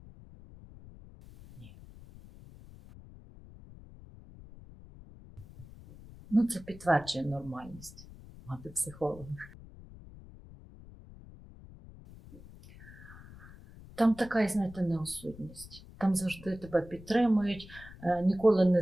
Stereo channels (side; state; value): left; noise; rumble, 18 dB below the sound